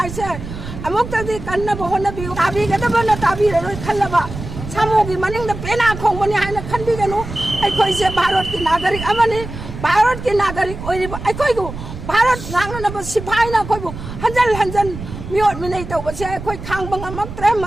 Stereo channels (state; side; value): noise; right; rumble, 10 dB below the sound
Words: 아목다디 간나바 혼나비고 다비가다바나 다비를 칼라바 사모기 마닝다 빼나 콩머니 하나 칸비가노 거의 이제 바로티 나가릭 아마니 바로티 나가릭 오이리바 거이고 भारत नांगनब सिपाहीना कोइबो हंजल हंजन मियोट मिनै तौबसे कोइ खांबंग अमत्रे